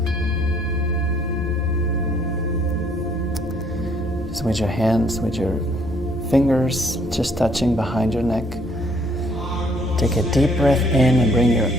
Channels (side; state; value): both; normal; correlation 0.64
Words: Just with your hands, with your fingers just touching behind your neck. Take a deep breath in and bring your